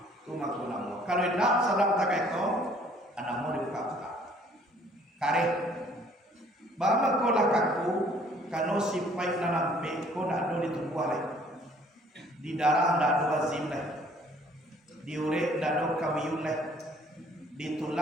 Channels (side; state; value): both; normal; correlation 0.58